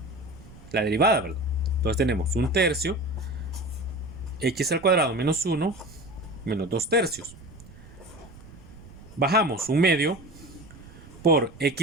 la derivada, ¿verdad? Entonces tenemos 1/3 x al cuadrado menos 1 menos 2/3. Bajamos 1/2 por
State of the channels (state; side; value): noise; right; rumble, 19 dB below the sound